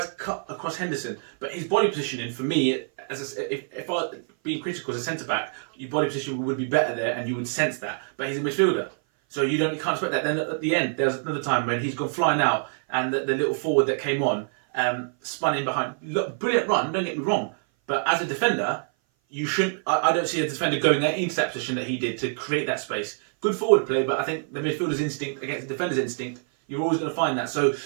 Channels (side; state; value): left; silent; 57 dB below the other